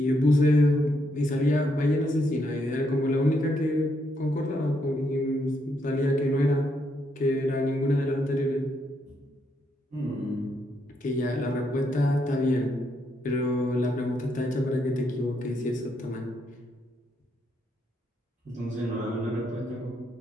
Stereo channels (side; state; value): both; normal; correlation 0.77